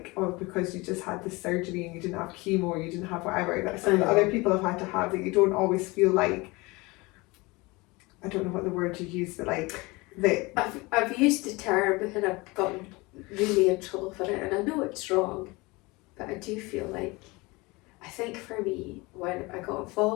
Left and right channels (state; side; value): quieter; right; 24.0 dB